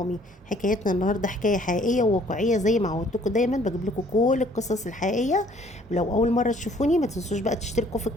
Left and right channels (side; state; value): both; normal; correlation 0.59